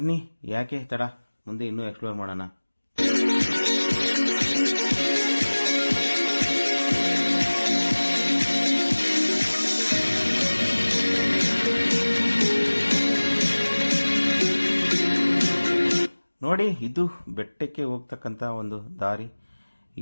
ಯಾಕೆ ತಡ, ಮುಂದೆ ಇನ್ನೂ ಎಕ್ಸ್ಪ್ಲೋರ್ ಮಾಡೋಣ. ನೋಡಿ, ಇದು ಬೆಟ್ಟಕ್ಕೆ ಹೋಗ್ತಕ್ಕಂಥ ಒಂದು ದಾರಿ.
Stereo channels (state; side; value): inverted; both; correlation -1.00